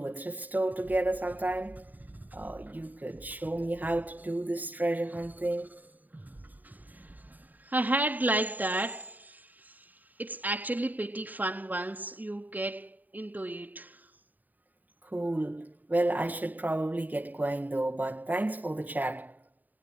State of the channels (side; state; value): left; late; 0.085 ms